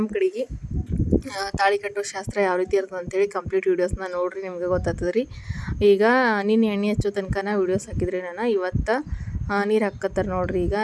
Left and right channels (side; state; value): both; identical; correlation 1.00